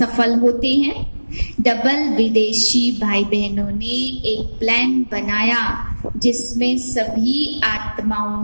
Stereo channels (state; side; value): inverted; both; correlation -1.00